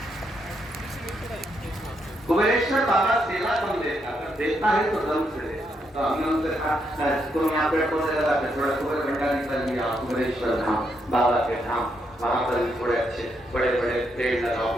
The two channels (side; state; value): both; normal; correlation 0.78